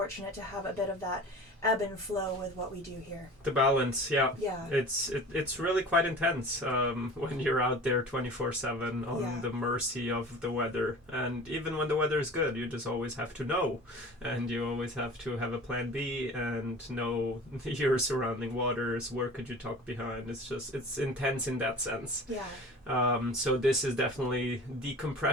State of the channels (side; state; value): both; normal; correlation 0.39